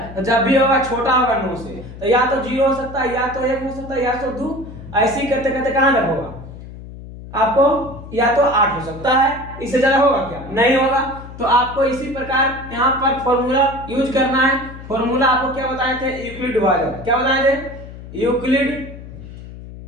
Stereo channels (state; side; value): noise; left; hum, 14 dB below the sound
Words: तो जब भी होगा छोटा होगा 9 से, तो या तो 0 हो सकता है, या तो 1 हो सकता है, या तो 2, ऐसे ही करते करते कहां तक होगा आपको, या तो 8 हो सकता है, इससे ज्यादा होगा क्या, नहीं होगा। तो आपको इसी प्रकार यहाँ पर फॉर्मूला यूज करना है। फॉर्मूला आपको क्या बताए थे, यूक्लिड विभाजन, क्या बताए थे, यूक्लिड